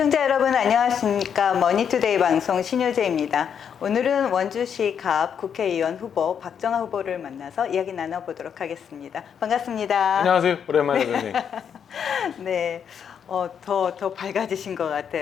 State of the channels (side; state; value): right; quieter; 7.7 dB